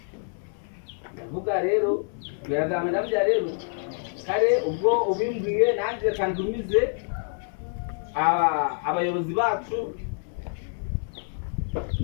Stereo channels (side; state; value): right; silent; 60 dB below the other